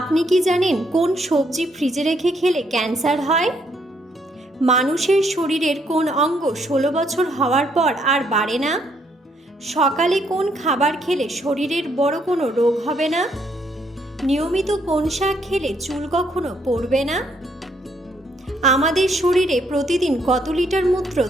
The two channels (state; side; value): normal; both; correlation 0.72